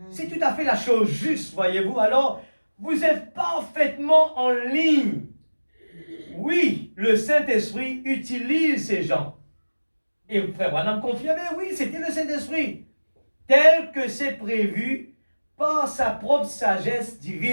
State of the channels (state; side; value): inverted; both; correlation -1.00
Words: C'est tout à fait la chose juste, voyez-vous. Alors, vous êtes parfaitement en ligne. Oui, le Saint-Esprit utilise ces gens. Et frère Branham confirmait, oui, c'était le Saint-Esprit. Tel que c'est prévu par sa propre sagesse